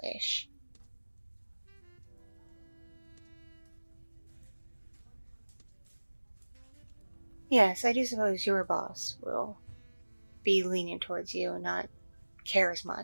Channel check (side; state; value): both; inverted; correlation -1.00